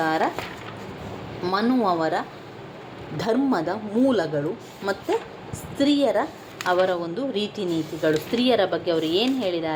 ಮನು ಅವರ ಧರ್ಮದ ಮೂಲಗಳು ಮತ್ತು ಸ್ತ್ರೀಯರ ಅವರ ಒಂದು ರೀತಿ ನೀತಿಗಳು, ಸ್ತ್ರೀಯರ ಬಗ್ಗೆ ಅವರು ಏನು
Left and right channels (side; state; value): both; identical; correlation 1.00